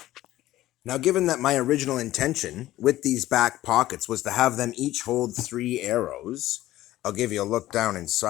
Now, given that my original intention with these back pockets was to have them each hold 3 arrows, I'll give you a look down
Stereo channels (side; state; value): right; quieter; 15.2 dB